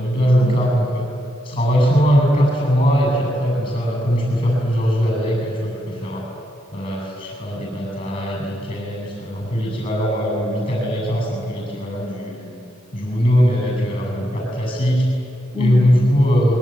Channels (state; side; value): normal; both; correlation 0.82